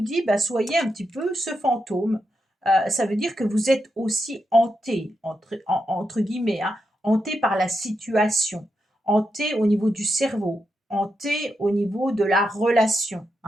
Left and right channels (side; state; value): both; normal; correlation 0.85